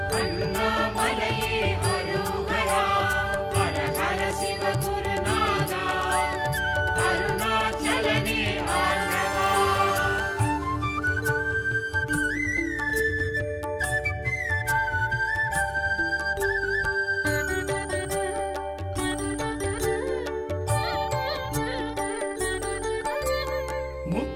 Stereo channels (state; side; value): identical; both; correlation 1.00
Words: அண்ணாமலையே ஹரோஹரா ஹர ஹர சிவகுருநாதா அருணாச்சலனே ஆண்டவா